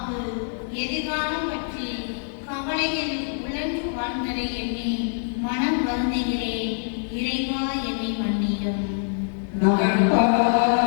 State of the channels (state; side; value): silent; right; digital silence